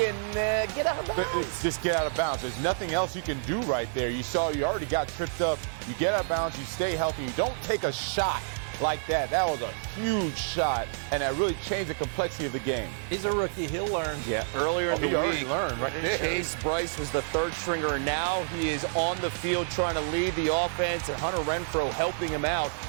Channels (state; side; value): silent; left; digital silence